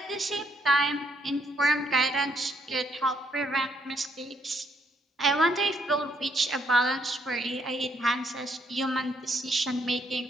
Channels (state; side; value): normal; both; correlation 0.71